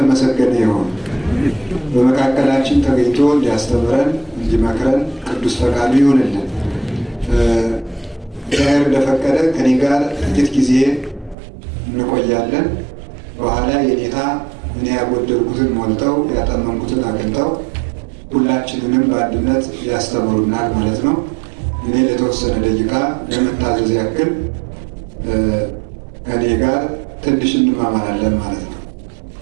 ይሁን። በመካከላችን ተገኝቶ እንዲያስተምረን እንዲመክረን ቅዱስ ፈቃዱ ይሁንልን። እግዚአብሔር እንደፈቀደ ከኔ ጋር ጥቂት ጊዜ እንቆያለን። በኋላ የኔታ እኔ ያጎደልኩትን ሞልተው ያጠመንኩትን አቅንተው ሁላችንንም በአንድነት ያስተምሩናል ማለት ነው። እኔ ለተወሰነ ደቂቃ ለመታዘዝ ያክል ከኔ ጋር ትንሽ እንማማራለን ማለት ነው።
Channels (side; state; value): left; drops out; at 11.4 s